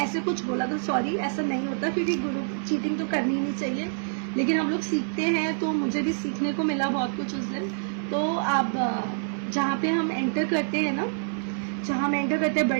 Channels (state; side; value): silent; left; digital silence